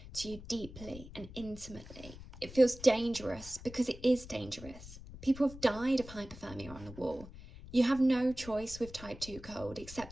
to you deeply and intimately. It feels dangerous because it is dangerous. People have died of hypothermia on the wall. You have no choice with type 2 cold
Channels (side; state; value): left; noise; rumble, 15 dB below the sound